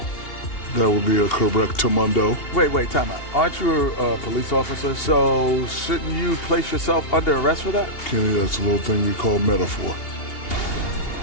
That would be a correctamundo. Wait, time out. Aren't you a police officer? So shouldn't you place yourself under arrest for that? Kenny, that's a little thing we call metaphor.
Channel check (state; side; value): late; right; 2.8 ms